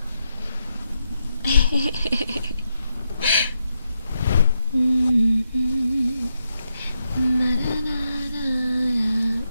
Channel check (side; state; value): both; inverted; correlation -0.84